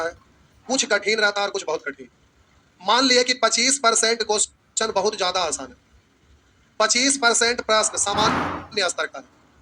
है, कुछ कठिन रहता है और कुछ बहुत कठिन। मान लिए कि 25% क्वेश्चन बहुत ज्यादा आसान है, 25% प्रश्न सामान्य स्तर का है,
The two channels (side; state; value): both; identical; correlation 1.00